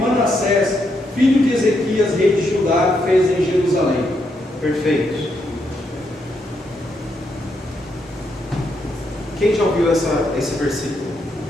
filho de Ezequias, rei de Judá, fez em Jerusalém. Perfeito. Quem já ouviu esse versículo?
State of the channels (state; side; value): normal; both; correlation 0.79